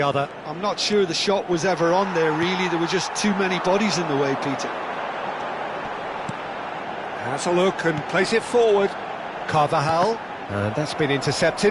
other. I'm not sure the shot was ever on there, really. There were just too many bodies in the way, Peter. Has a look and plays it forward. Carvajal, and that's been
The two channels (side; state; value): both; identical; correlation 1.00